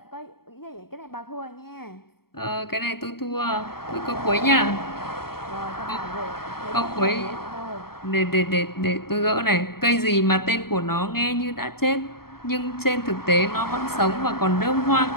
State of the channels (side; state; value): right; late; 0.94 ms